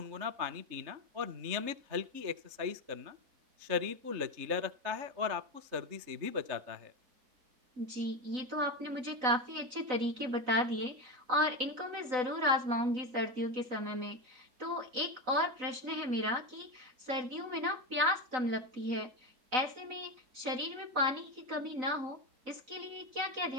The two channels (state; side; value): late; left; 4.0 ms